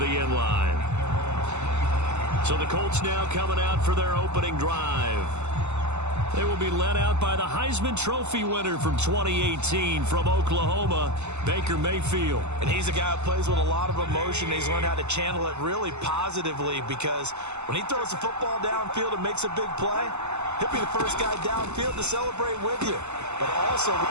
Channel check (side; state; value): left; late; 0.83 ms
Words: end line. So the Colts now coming out for their opening drive. They will be led out by the Heisman Trophy winner from 2018 from Oklahoma, Baker Mayfield. And he's a guy who plays with a lot of emotion. He's learned how to channel it really positively, because when he throws the football downfield and makes a big play, he'll be the first guy downfield to celebrate with you. But also,